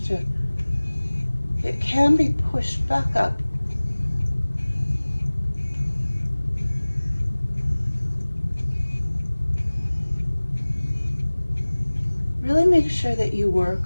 it can be pushed back up. Really make sure that you work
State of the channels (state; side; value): inverted; both; correlation -1.00